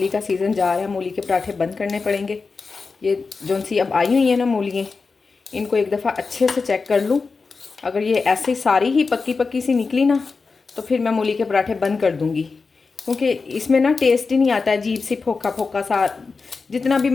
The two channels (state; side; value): quieter; right; 4.5 dB